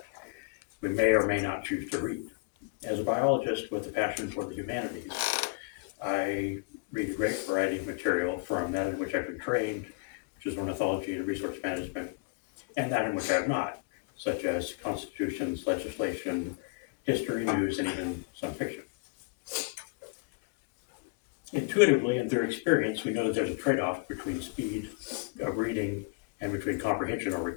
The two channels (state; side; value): quieter; right; 28.9 dB